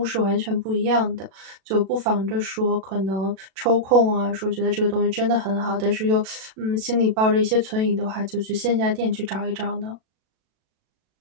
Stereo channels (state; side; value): late; left; 37 ms